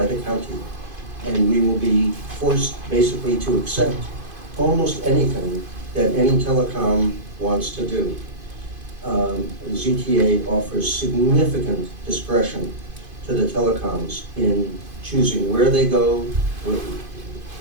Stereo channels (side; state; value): left; late; 2.5 ms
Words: the county. And we will be forced basically to accept almost anything that any telecom wants to do. ZTA offers significant discretion to the telecoms in choosing where they go.